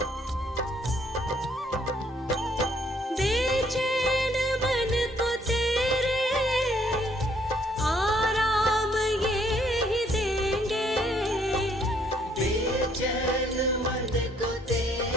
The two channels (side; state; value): both; normal; correlation 0.66